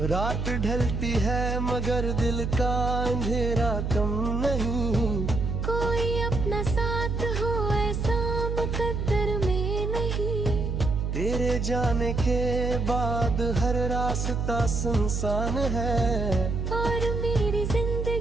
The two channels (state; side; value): noise; right; hum, 1 dB below the sound